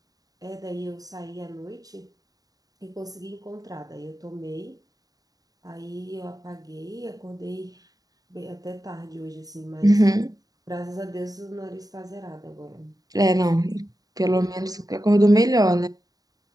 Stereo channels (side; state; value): left; late; 0.18 ms